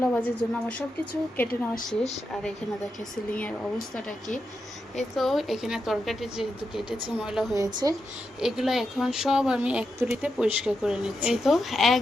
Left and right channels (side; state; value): both; normal; correlation 0.86